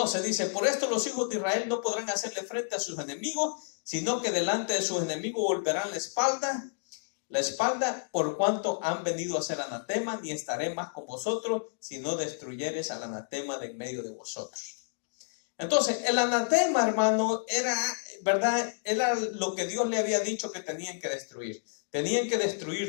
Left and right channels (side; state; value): right; silent; digital silence